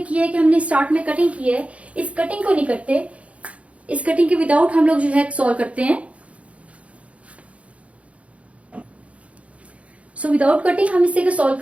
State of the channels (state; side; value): late; left; 0.064 ms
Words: है कि हमने स्टार्ट में कटिंग की है, इस कटिंग को नहीं करते, इस कटिंग के विदाउट हम लोग जो है सॉल्व करते हैं। सो विदाउट कटिंग हम इसे सॉल्व